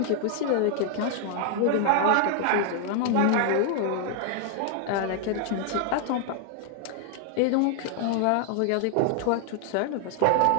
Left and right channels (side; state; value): both; different; correlation 0.00